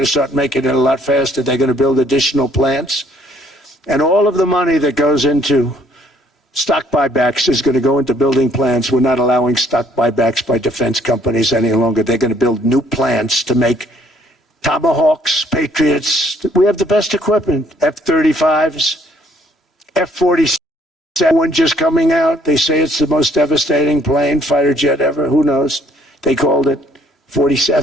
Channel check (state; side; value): normal; both; correlation 0.63